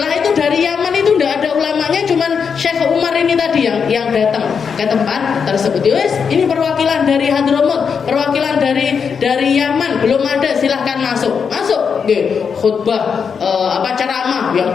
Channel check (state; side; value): quieter; right; 6.3 dB